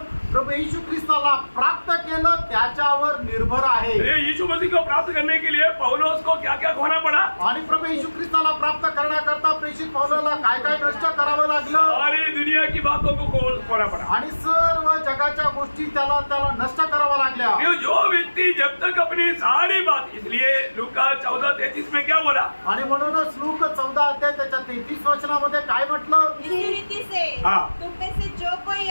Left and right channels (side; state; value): both; inverted; correlation -1.00